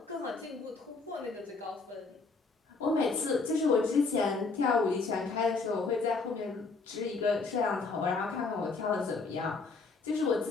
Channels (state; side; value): quieter; right; 4.1 dB